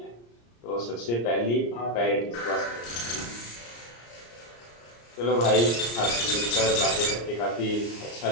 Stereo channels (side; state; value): right; late; 34 ms